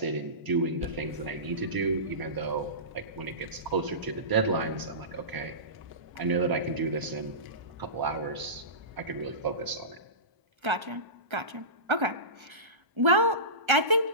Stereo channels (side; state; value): left; late; 1.3 ms